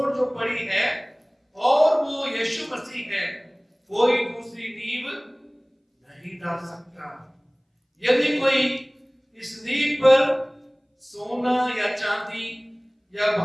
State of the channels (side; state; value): both; identical; correlation 1.00